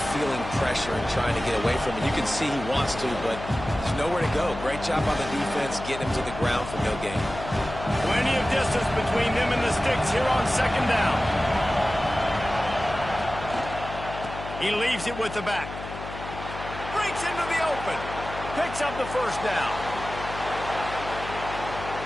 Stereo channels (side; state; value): left; noise; hum, 10 dB below the sound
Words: feeling pressure and trying to get away from it. You can see he wants to, but there's nowhere to go. Great job on the defense, getting him to the ground for no gain. Plenty of distance between them and the sticks here on second down. He leaves it with the back. Breaks into the open. Picks up the first down.